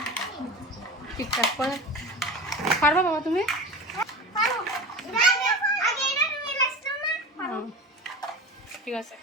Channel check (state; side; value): normal; both; correlation 0.30